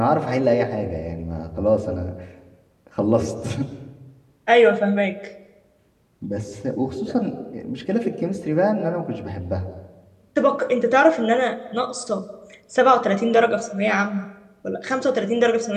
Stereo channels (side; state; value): both; identical; correlation 1.00